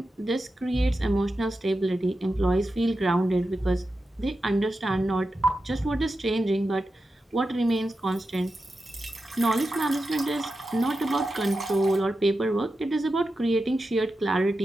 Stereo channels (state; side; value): normal; both; correlation 0.91